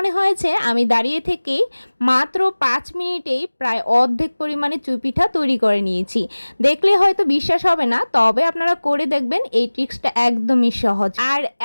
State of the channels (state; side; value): inverted; both; correlation -1.00